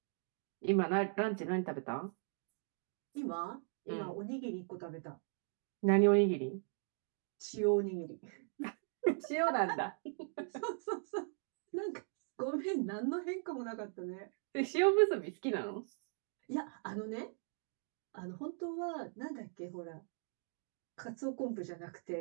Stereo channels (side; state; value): left; silent; 52 dB below the other